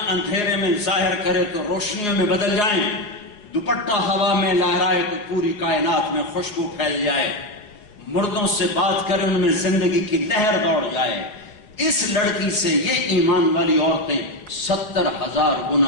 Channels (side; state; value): right; late; 4.8 ms